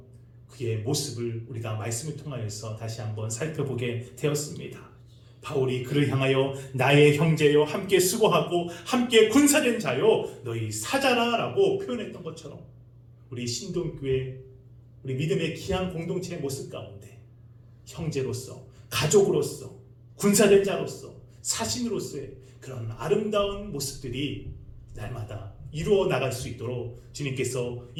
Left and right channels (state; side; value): identical; both; correlation 1.00